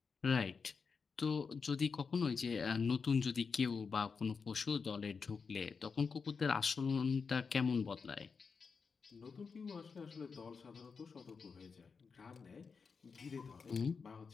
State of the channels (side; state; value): right; quieter; 5.3 dB